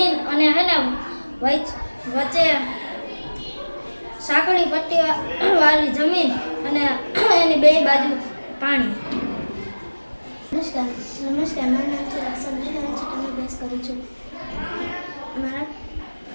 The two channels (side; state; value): both; inverted; correlation -1.00